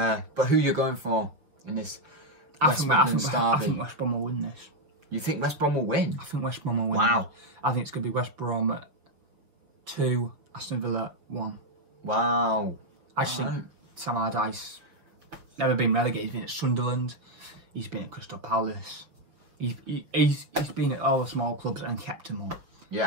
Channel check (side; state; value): left; late; 6.1 ms